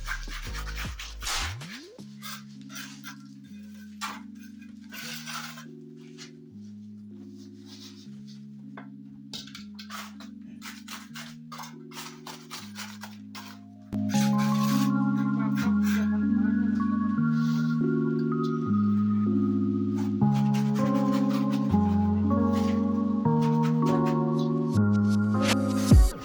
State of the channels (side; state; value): both; identical; correlation 1.00